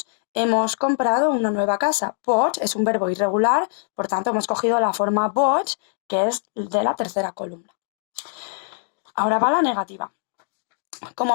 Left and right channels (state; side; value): silent; right; digital silence